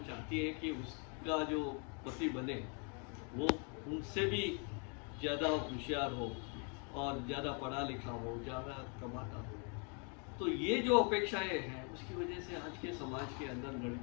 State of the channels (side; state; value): right; quieter; 37.6 dB